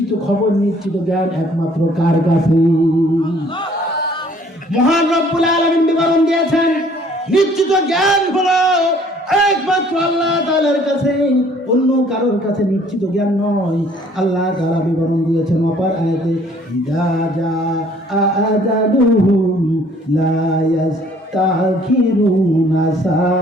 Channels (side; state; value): both; normal; correlation 0.58